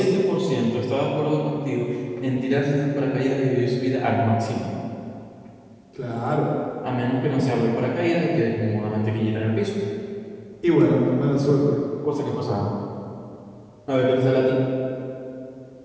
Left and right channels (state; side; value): identical; both; correlation 1.00